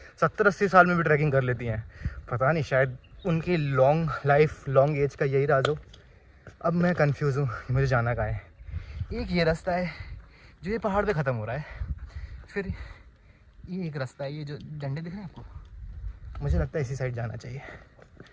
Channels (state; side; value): identical; both; correlation 1.00